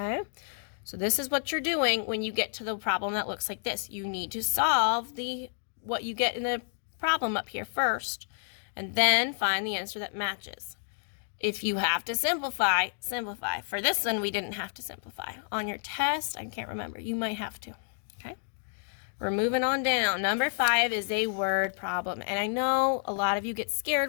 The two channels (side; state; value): right; silent; digital silence